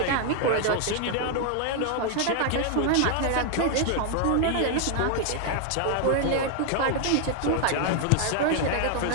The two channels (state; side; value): different; both; correlation 0.00